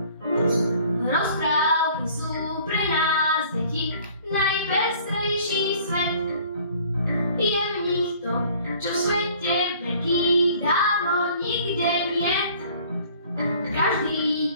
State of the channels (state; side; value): inverted; both; correlation -0.53